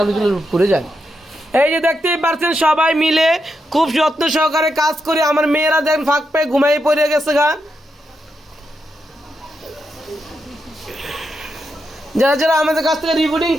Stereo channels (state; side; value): normal; both; correlation 0.84